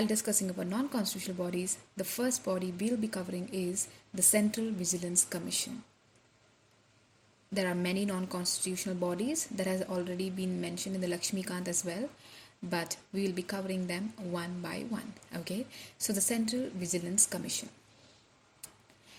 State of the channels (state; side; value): identical; both; correlation 1.00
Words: discussing about non-constitutional bodies, the first body we'll be covering is the Central Vigilance Commission. There are many non-constitutional bodies that has already been mentioned in the Lakshmikant as well, but we will be covering them one by one. Okay, so the Central Vigilance Commission.